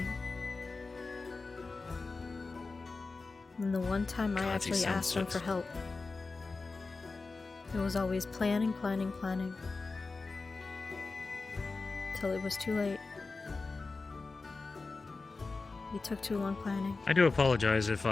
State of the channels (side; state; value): right; quieter; 3.9 dB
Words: And the one time I actually asked him for help, it was always planning. Till it was too late. He took too long planning. I do apologize if